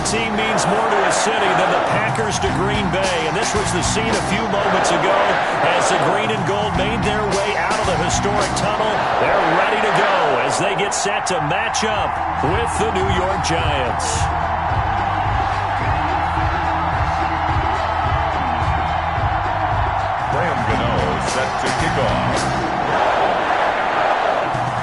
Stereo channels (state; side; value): identical; both; correlation 1.00